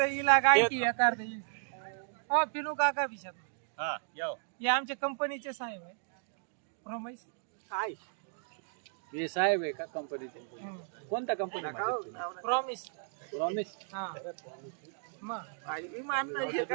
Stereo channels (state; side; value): silent; left; digital silence